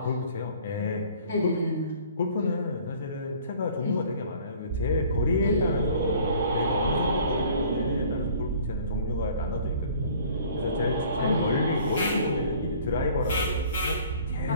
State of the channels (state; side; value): inverted; both; correlation -0.52